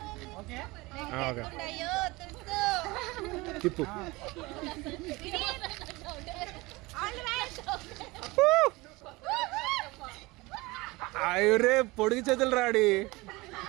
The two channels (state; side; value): quieter; left; 22.5 dB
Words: అయ్యో తిప్పు. అయ్యరే పొడిగి చేతులు రాడి.